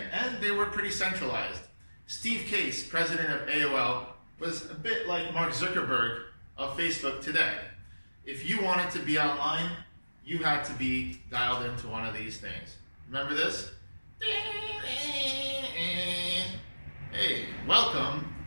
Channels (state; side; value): inverted; both; correlation -1.00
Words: and they were pretty centralized. Steve Case, president of AOL, was a bit like Mark Zuckerberg of Facebook today. If you wanted to be online, you had to be dialed into one of these things. Remember this? Hey, welcome,